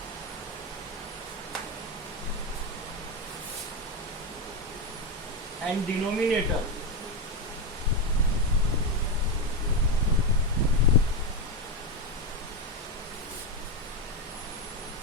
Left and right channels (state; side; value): normal; both; correlation 0.10